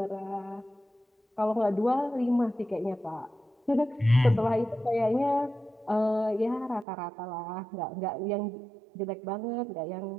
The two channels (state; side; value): drops out; left; at 6.9 s